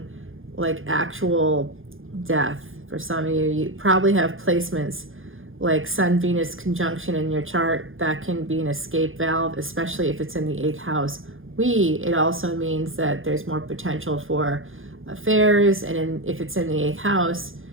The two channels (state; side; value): late; left; 0.59 ms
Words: like actual death for some of you. You probably have placements like Sun-Venus conjunction in your chart. That can be an escape valve, especially if it's in the 8th house. It also means that there's more potential for affairs, and if it's in the 8th house,